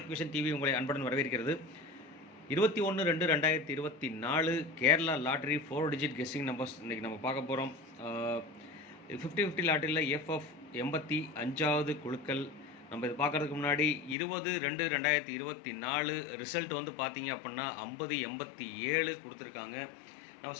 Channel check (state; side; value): drops out; right; at 14.2 s